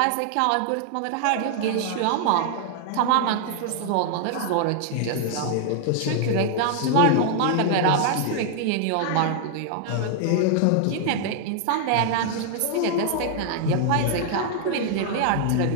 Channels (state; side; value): different; both; correlation 0.00